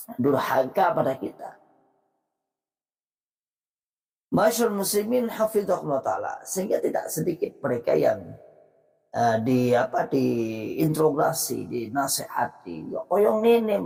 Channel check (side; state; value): both; identical; correlation 1.00